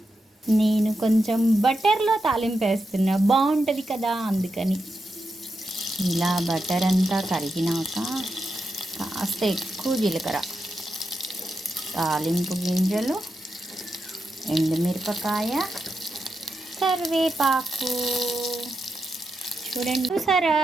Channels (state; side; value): normal; both; correlation 0.87